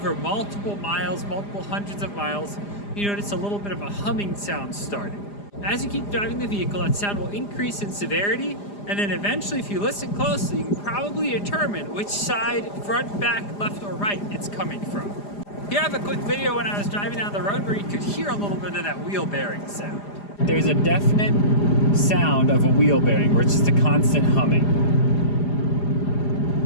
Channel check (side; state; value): right; late; 4.9 ms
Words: multiple miles, multiple hundreds of miles, you notice a little bit of a humming sound starting. As you keep driving the vehicle, that sound will increase in severity, and then eventually, if you listen closely, you can probably determine which side, front, back, left, or right it's coming from. Here I have a quick video when I was driving down the road where you could hear a little bit of that wheel bearing sound. There's a definite sound of a wheel bearing where it's just a constant humming.